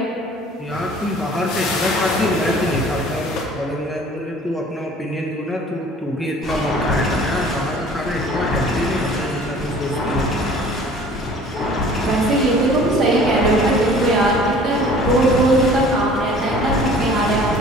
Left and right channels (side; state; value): both; normal; correlation 0.49